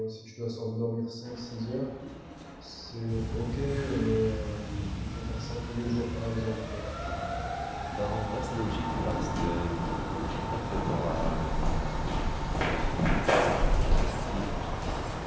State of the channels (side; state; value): both; identical; correlation 1.00